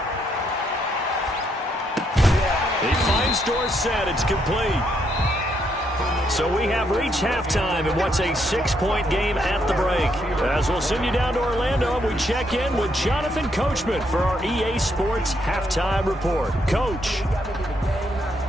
He finds Dorsett. It's complete. So we have reached halftime in what's a 6-point game at the break. As we'll send you down to Orlando, we check in with Jonathan Coachman for our EA Sports Halftime Report. Coach.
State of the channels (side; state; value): both; normal; correlation 0.75